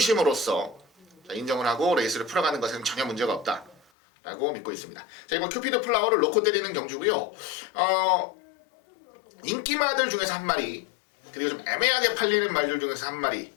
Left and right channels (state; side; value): drops out; right; at 3.8 s